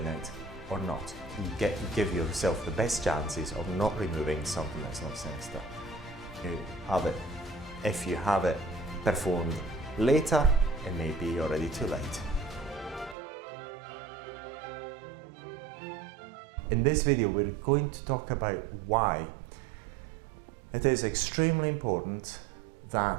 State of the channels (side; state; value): left; drops out; at 13.2 s